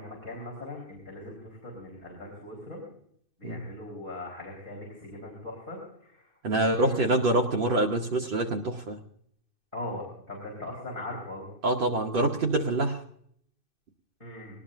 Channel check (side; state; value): left; late; 2.6 ms